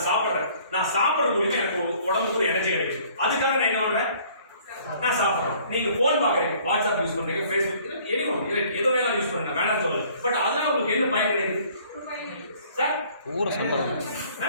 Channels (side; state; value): both; inverted; correlation -0.56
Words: சாப்பிடுறது மூலியமா எனக்கு உடம்புக்கு ஒரு எனர்ஜி கிடைக்குது. அதுக்காக நான் என்ன பண்றேன்? நான் சாப்பிடுறேன். நீங்க போன் பாக்குறீங்க, வாட்ஸ்அப் யூஸ் பண்றீங்க, ஃபேஸ்புக், ஏதோ வேணா யூஸ் பண்ணுங்க, வேணாம் சொல்லல. பட் அதனால உங்களுக்கு என்ன பயன் கிடைக்குது சார்?